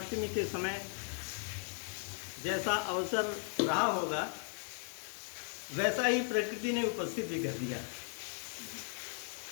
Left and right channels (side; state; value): right; silent; 53 dB below the other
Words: के समय जैसा अवसर रहा होगा वैसा ही प्रकृति ने उपस्थित भी कर दिया।